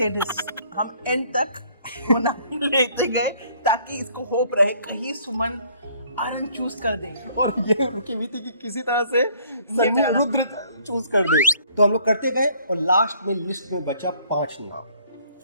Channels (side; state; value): both; inverted; correlation -0.61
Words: हम and तक वो नाम लेते गए ताकि इसको होप रहे कहीं सुमन आनंद चूज कर दे। और ये रुकी हुई थी कि किसी तरह से सन्नी रुद्र चूज कर दे। तो हम लोग करते गए और लास्ट में लिस्ट में बचा 5 नाम।